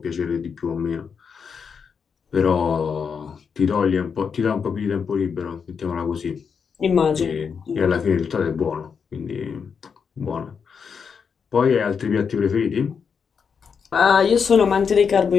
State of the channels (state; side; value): quieter; right; 6.3 dB